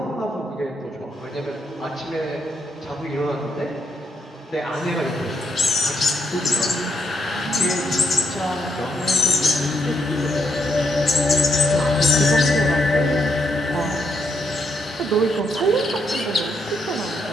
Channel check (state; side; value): normal; both; correlation 0.78